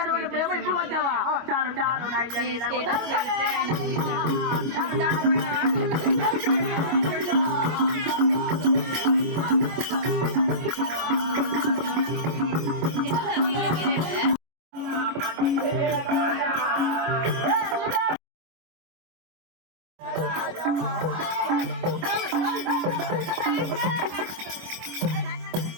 ప్రేమ ఇప్పుడు వచ్చావా? చాలు చాలు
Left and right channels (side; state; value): left; late; 25 ms